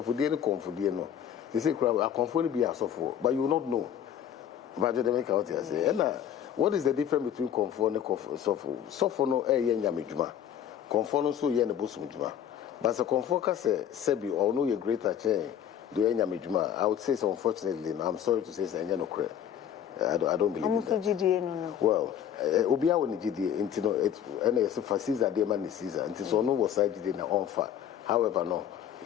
for dinner, confordiano. They say, I conform be a software, but you will not know. But they make out here say, what is the difference between conform and software? Software no a yen yamijuma. Conform so yen a busmujuma. But a conform say, Sebi, or no, your greater chain, do yen yamijuma. I would say so, unfortunately, I'm sorry to say, say, no, I don't believe in that. Well, Obia when GDA, into it, and it's for Caesar, dear man is Caesar, and it's no was side in the on fire. However, no,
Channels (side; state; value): right; quieter; 9.5 dB